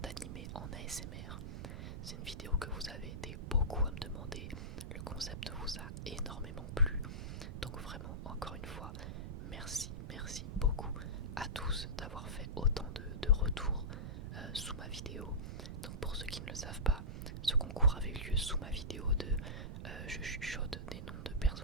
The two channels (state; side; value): noise; right; rumble, 6 dB below the sound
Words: d'animé en ASMR. C'est une vidéo que vous avez été beaucoup à me demander, le concept vous a énormément plu, donc vraiment encore une fois, merci beaucoup à tous d'avoir fait autant de retours sous ma vidéo. Donc pour ceux qui ne le savent pas, ce concours avait eu lieu sous ma vidéo de je chuchote des noms de